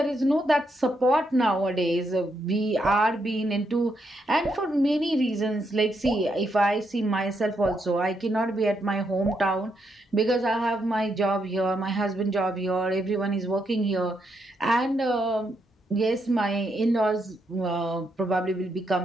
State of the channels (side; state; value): both; normal; correlation 0.79